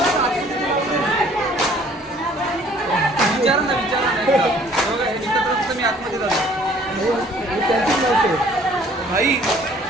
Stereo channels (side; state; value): both; normal; correlation 0.56